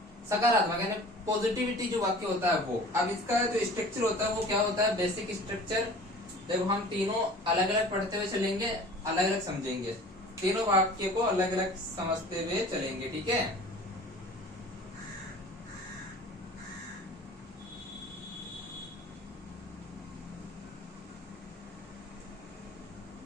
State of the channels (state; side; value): normal; both; correlation 0.44